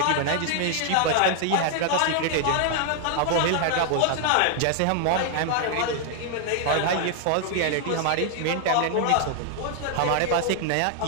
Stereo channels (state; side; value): different; both; correlation 0.00